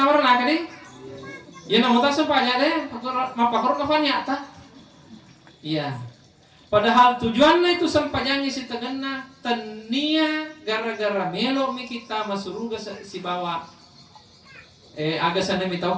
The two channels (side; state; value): both; identical; correlation 1.00